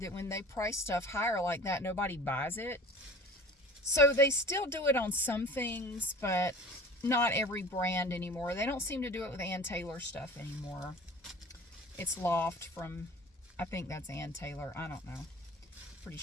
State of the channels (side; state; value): both; normal; correlation 0.42